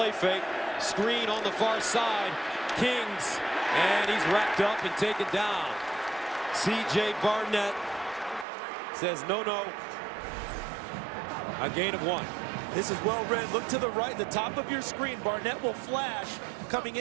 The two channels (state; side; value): drops out; left; at 8.5 s